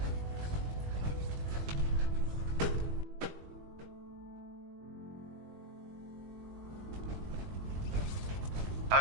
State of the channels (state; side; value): late; left; 20 ms